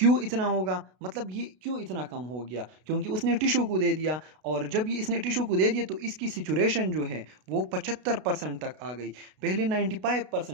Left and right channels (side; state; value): left; late; 32 ms